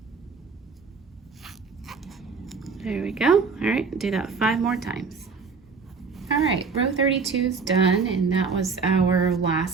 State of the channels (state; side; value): quieter; left; 5.0 dB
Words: There we go. All right, do that 5 more times. All right, row 32 is done, and that was our